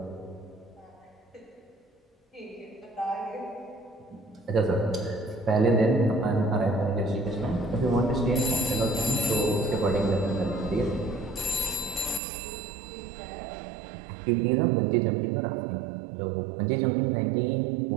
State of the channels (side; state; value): left; drops out; at 12.2 s